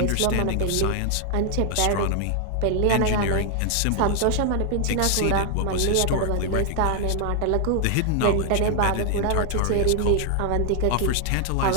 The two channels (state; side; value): different; both; correlation 0.00